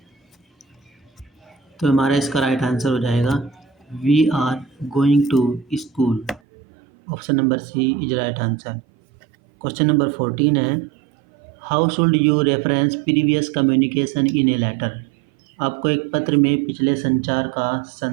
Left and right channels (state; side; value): drops out; left; at 6.4 s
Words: तो हमारा इसका राइट आंसर हो जाएगा we are going to school. Option number C is right answer. Question number 14 है, how should you reference previous communication in a letter. आपको एक पत्र में पिछले संचार का